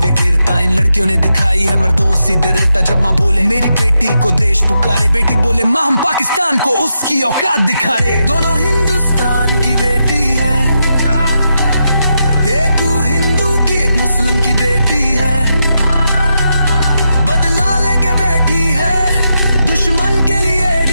इन लड़कियों ने दिखाई है मर्दों सी दृढ़ता। जब माँ बोले मेरी बेटी को देश पुकारे, बेटी बोले माँ हम पाकिस्तान को उसकी औकात दिखाए। दोनों हिंदुस्तान की बेटी है, एक हिंदू की एक मुस्लिम की बेटी है, बदला लेके बैठी है दुश्मन के लिए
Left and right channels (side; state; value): both; inverted; correlation -0.84